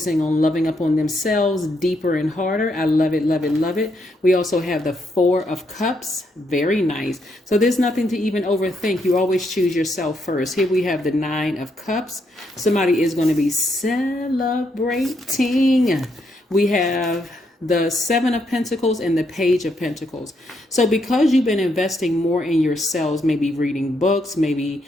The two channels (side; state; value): both; normal; correlation 0.76